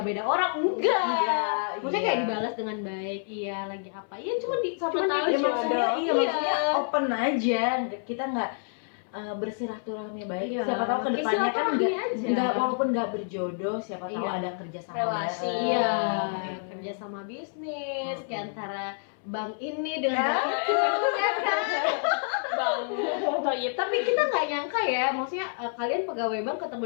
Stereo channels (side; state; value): right; silent; 59 dB below the other